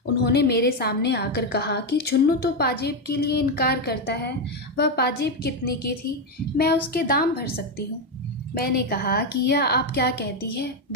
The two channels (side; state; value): both; normal; correlation 0.07